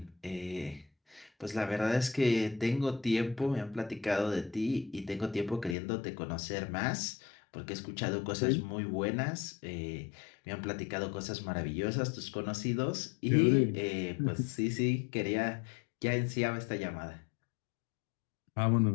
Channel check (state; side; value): drops out; right; at 5.8 s